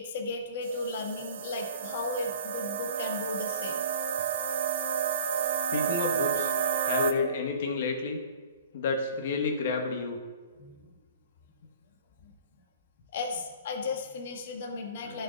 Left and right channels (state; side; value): inverted; both; correlation -0.46